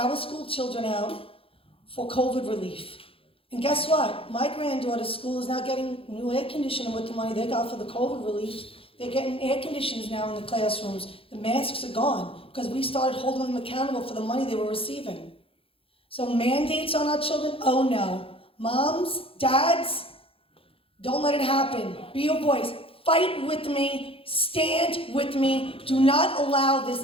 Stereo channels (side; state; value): right; late; 0.27 ms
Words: school children out for COVID relief. And guess what? My granddaughter's school is now getting new air conditioning with the money they got for the COVID relief. They're getting air conditioners now in the classrooms. The masks are gone because we started holding them accountable for the money they were receiving. So mandates on our children? Oh no. Moms, dads, don't let it happen. Be a voice. Fight with me. Stand with me. Do not allow this